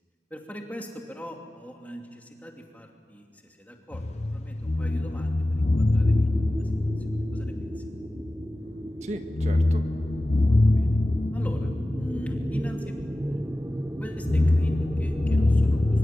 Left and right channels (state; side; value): normal; both; correlation 0.96